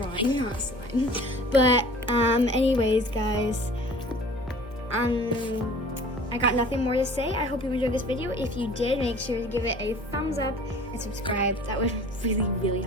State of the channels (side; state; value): both; normal; correlation 0.47